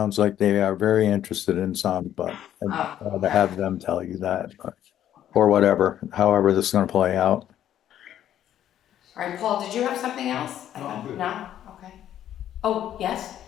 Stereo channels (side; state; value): right; quieter; 11.2 dB